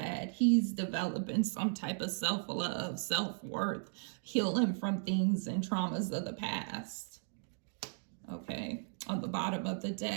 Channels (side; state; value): left; silent; 54 dB below the other